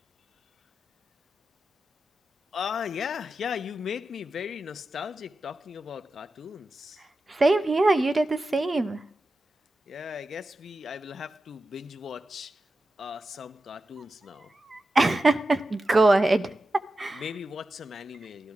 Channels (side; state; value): both; normal; correlation 0.91